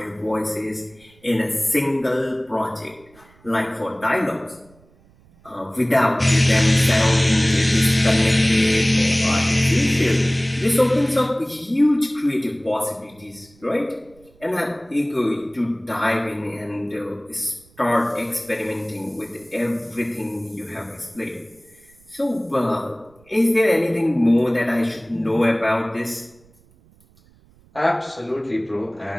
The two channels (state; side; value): noise; right; rumble, 30 dB below the sound